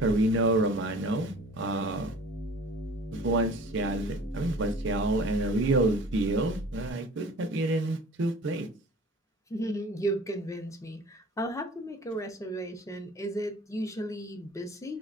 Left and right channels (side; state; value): both; normal; correlation 0.45